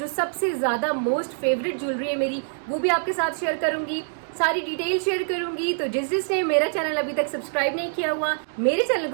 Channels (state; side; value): silent; left; digital silence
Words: सबसे ज़्यादा मोस्ट फेवरेट ज्वेलरी है मेरी, वो भी आपके साथ शेयर करूंगी, सारी डिटेल शेयर करूंगी। तो जिसने मेरा चैनल अभी तक सब्सक्राइब नहीं किया हुआ, मेरे चैनल